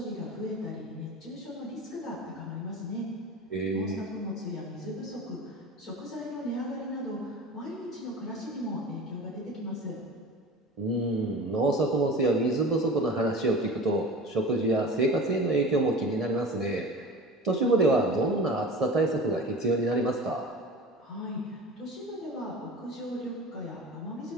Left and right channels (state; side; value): normal; both; correlation 0.35